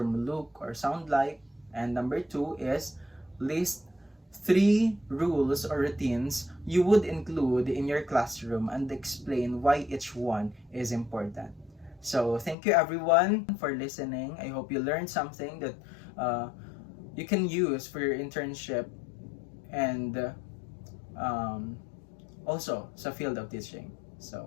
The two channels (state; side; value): drops out; right; at 12.6 s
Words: look or sound like? And number 2 is list 3 rules or routines you would include in your classroom and explain why each one is important. So thank you everyone for listening. I hope you learned something that you can use for your internship and also sa field of teaching. So